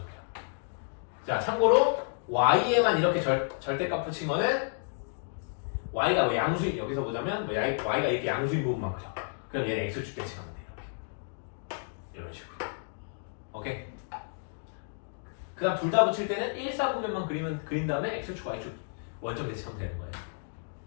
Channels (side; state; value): right; silent; digital silence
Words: 자, 참고로 y에만 이렇게 절대값 붙인 거는 y가 뭐 양수인, 여기서 보자면 뭐 y가 이렇게 양수인 부분만 그려. 그럼 얘는 x축 대칭하면 돼. 이런 식으로. 오케이? 그 다음 둘 다 붙일 때는 1사분면만 그린 다음에 x축, y축 원점 대칭하면 되는 거예요.